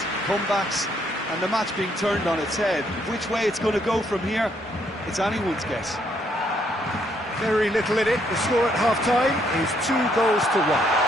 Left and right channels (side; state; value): both; normal; correlation 0.71